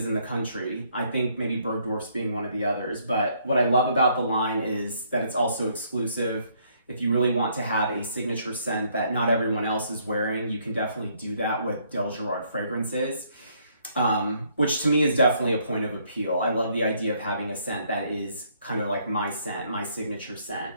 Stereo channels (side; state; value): both; inverted; correlation -0.68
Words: in the country. I think maybe Bergdorf's being one of the others. But what I love about the line is that it's also exclusive. If you really want to have a signature scent that not everyone else is wearing, you can definitely do that with Dalegerard fragrances. Which to me is definitely a point of appeal. I love the idea of having a scent that is kind of like my scent, my signature scent.